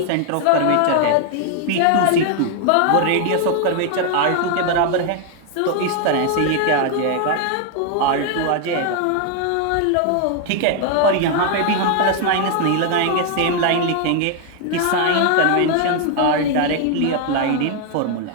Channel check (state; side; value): different; both; correlation 0.00